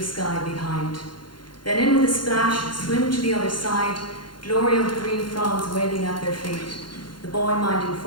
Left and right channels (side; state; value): right; late; 0.72 ms